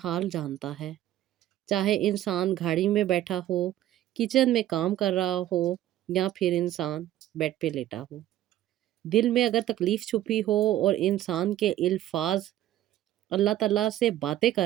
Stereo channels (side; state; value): left; quieter; 13.2 dB